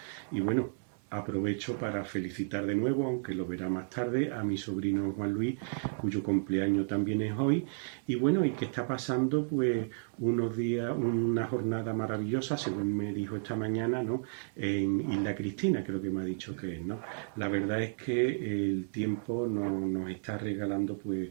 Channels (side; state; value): left; silent; digital silence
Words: Y bueno, aprovecho para felicitar de nuevo, aunque lo verá más tarde, a mi sobrino Juan Luis, cuyo cumpleaños también es hoy. Y bueno, y que está pasando pues unos días, una jornada maravillosa, según me dijo esta mañana, ¿no? En Isla Cristina, creo que me ha dicho que es, ¿no? La verdad es que el tiempo nos está regalando pues